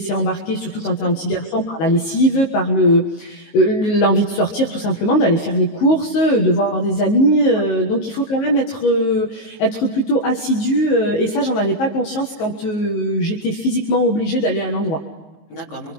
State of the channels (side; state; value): right; late; 19 ms